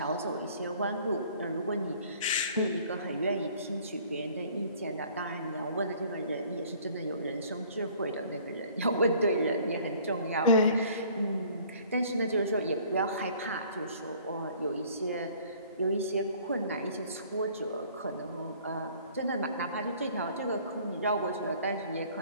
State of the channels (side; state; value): both; inverted; correlation -0.54